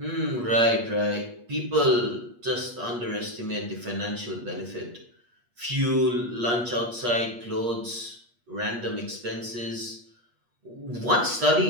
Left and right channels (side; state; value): left; late; 8.4 ms